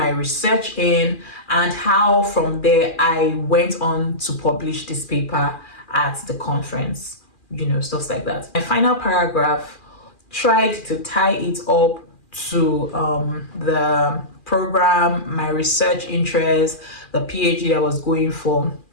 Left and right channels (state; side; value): late; right; 2.4 ms